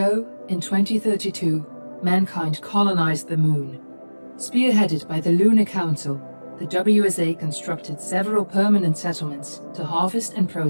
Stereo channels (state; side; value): inverted; both; correlation -1.00